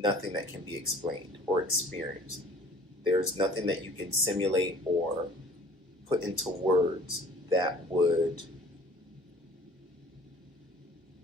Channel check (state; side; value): normal; both; correlation 0.51